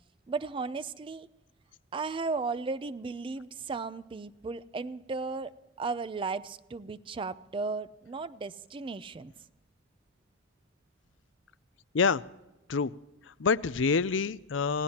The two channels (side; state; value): both; normal; correlation 0.04